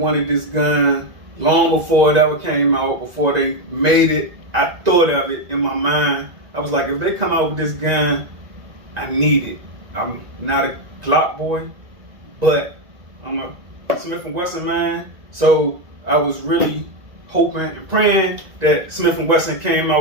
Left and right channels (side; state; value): left; late; 1.9 ms